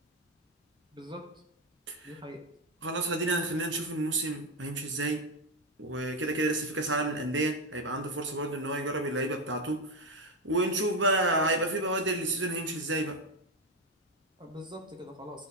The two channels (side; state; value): both; normal; correlation 0.10